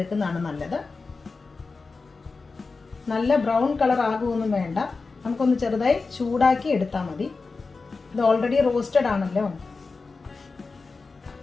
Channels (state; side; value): quieter; right; 4.1 dB